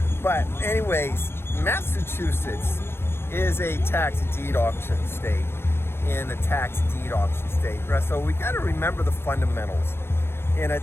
But anyways, Massachusetts is a tax deed auction state, in a tax deed auction state. So we got to remember the fundamentals. In a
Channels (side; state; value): right; late; 0.11 ms